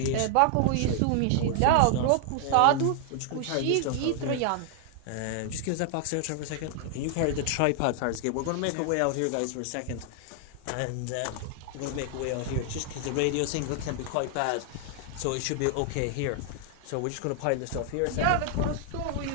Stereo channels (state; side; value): different; both; correlation 0.00